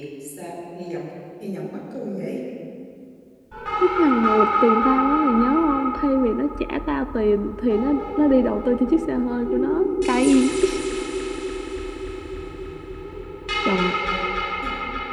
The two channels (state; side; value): identical; both; correlation 1.00